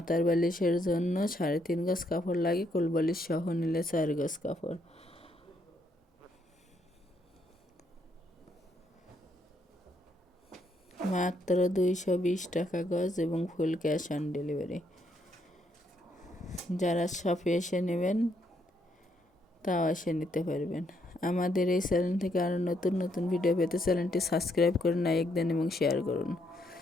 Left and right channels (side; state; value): both; normal; correlation 0.74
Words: বালিশের জন্য 3.5 গজ কাপড় লাগে, কোলবালিশ সহ নিলে 4 গজ কাপড়। মাত্র 220 টাকা গজ এবং ফুল ক্যাশ অন ডেলিভারি। যারা শপে এসে নেবেন তাও এসে নিতে পারবেন। আমাদের এই চ্যানেল থেকে আরও নতুন নতুন ভিডিও পেতে চ্যানেলটি সাবস্ক্রাইব করুন, লাইক দেন এবং শেয়ার করুন।